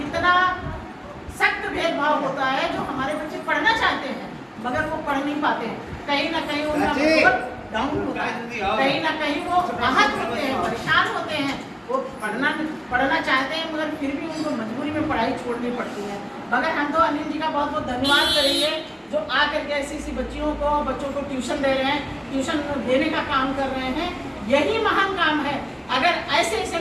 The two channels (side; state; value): both; identical; correlation 1.00